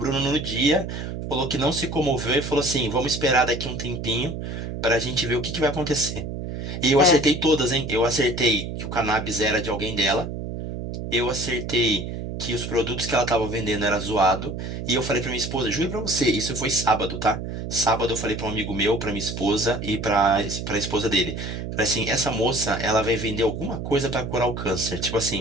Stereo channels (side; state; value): right; noise; hum, 6 dB below the sound